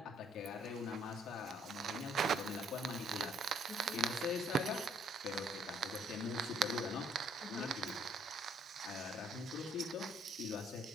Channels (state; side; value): normal; both; correlation 0.65